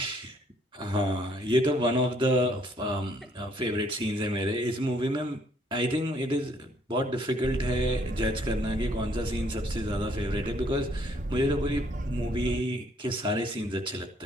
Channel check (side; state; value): both; normal; correlation 0.65